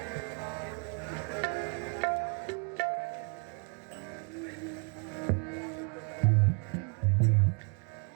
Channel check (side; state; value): left; quieter; 36.4 dB